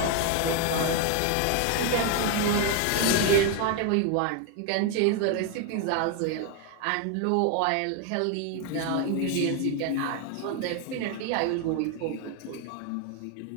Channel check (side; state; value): both; different; correlation 0.01